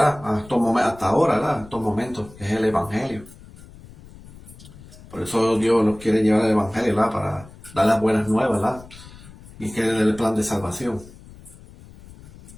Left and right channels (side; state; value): left; noise; rumble, 20 dB below the sound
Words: Hasta ahora, ¿verdad? Estos momentos, que es el Evangelio. Por eso Dios nos quiere llevar al Evangelio, ¿verdad? Para dar las buenas nuevas, ¿verdad? Y que es el plan de salvación.